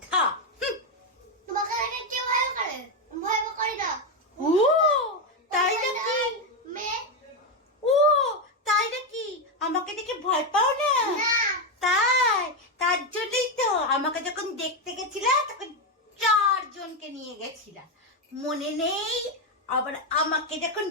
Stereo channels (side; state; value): both; normal; correlation 0.07